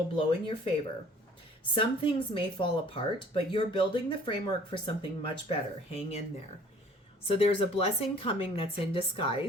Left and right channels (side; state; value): both; normal; correlation 0.53